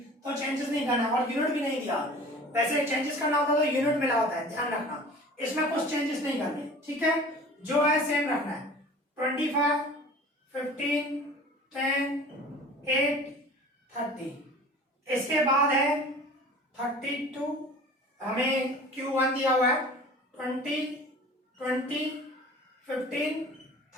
तो चेंजेस नहीं करना और यूनिट भी नहीं दिया। वैसे चेंजेस करना होता तो यूनिट मिला होता है, ध्यान रखना। इसमें कुछ चेंजेस नहीं करने, ठीक है, जो है सेम रखना है। 25, 15, 10, 8, 30। इसके बाद है 32, हमें Q1 दिया हुआ है 20, 15,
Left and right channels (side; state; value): both; normal; correlation 0.43